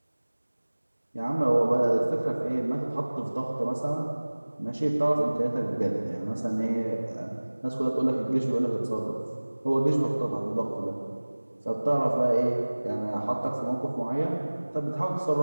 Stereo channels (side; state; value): both; inverted; correlation -1.00